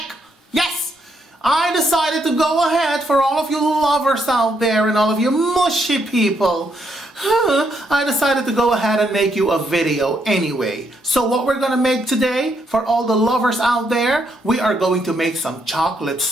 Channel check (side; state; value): both; normal; correlation 0.76